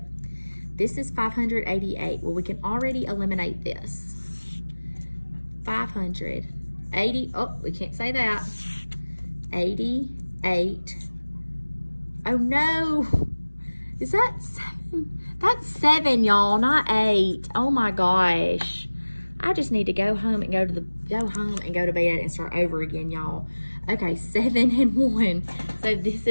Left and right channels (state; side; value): inverted; both; correlation -1.00